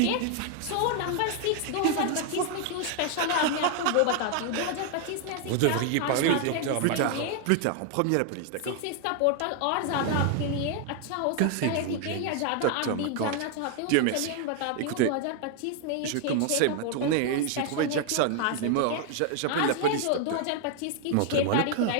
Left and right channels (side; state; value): both; different; correlation 0.00